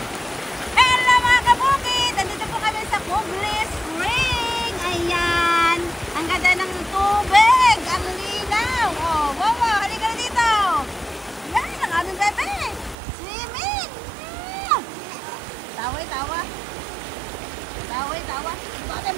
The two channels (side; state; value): left; drops out; at 13.0 s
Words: Hello mga kabukid! Nandito po kami sa Kuglis Spring. Ayan. Ang ganda ng tubig. Ang linaw. Oh, wow, halika na dito. Yan, ang aming bebe. Swimming. Tawa. Tawa. Tawa. Bakit